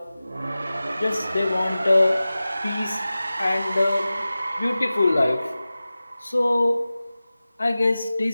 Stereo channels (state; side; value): inverted; both; correlation -0.96